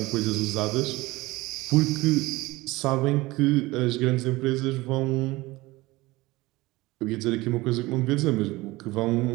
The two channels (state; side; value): quieter; left; 20.4 dB